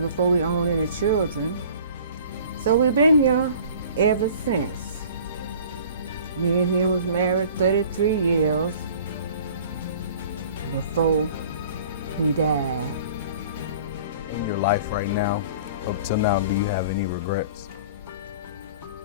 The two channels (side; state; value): both; inverted; correlation -0.47